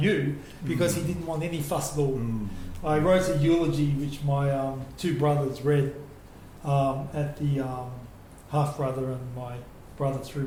because he didn't want any fuss at all. I wrote a eulogy which my two brothers read at the half-brother and my brother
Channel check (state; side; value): identical; both; correlation 1.00